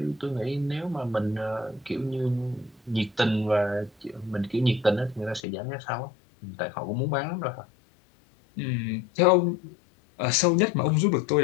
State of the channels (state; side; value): drops out; right; at 5.4 s